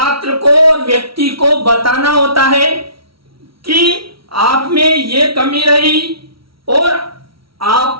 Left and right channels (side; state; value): left; late; 0.75 ms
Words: को और व्यक्ति को बताना होता है कि आप में ये कमी रही और